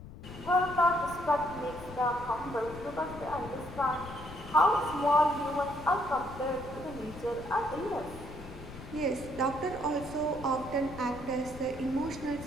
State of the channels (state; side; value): noise; left; rumble, 14 dB below the sound